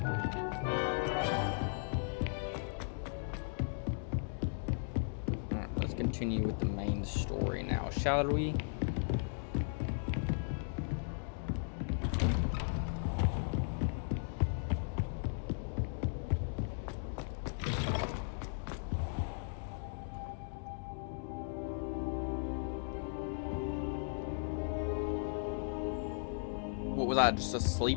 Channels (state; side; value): silent; right; digital silence